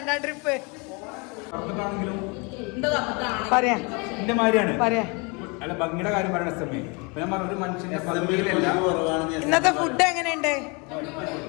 ട്രിപ്പ് പറയാ പറയാ. ഇന്നത്തെ ഫുഡ് എങ്ങനെയുണ്ട്?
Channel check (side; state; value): right; quieter; 30.6 dB